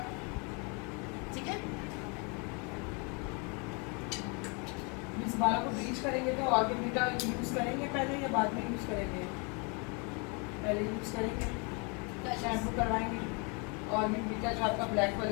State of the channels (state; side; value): quieter; right; 33.3 dB